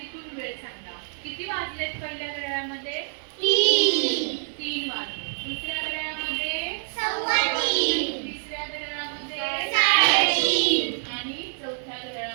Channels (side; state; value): left; silent; 61 dB below the other